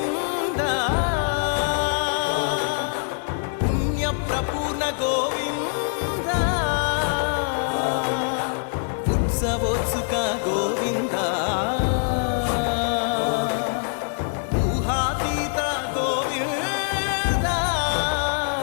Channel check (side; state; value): right; silent; 63 dB below the other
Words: పుణ్య ప్రపూర్ణ గోవింద ఉత్సవోత్సుక గోవింద